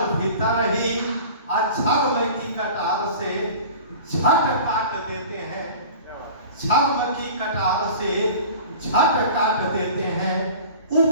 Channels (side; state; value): both; inverted; correlation -0.40